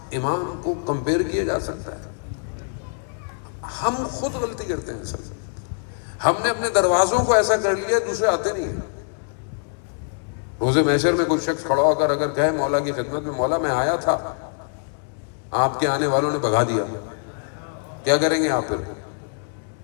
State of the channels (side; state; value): right; silent; 59 dB below the other